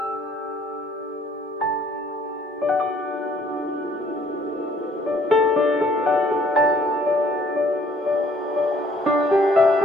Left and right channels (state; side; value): normal; both; correlation 0.60